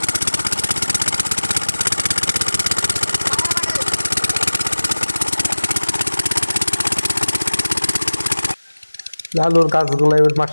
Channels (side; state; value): both; inverted; correlation -1.00